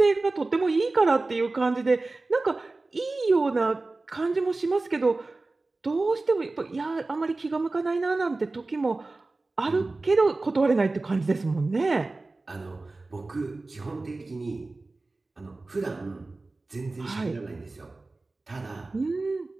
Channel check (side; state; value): left; quieter; 3.3 dB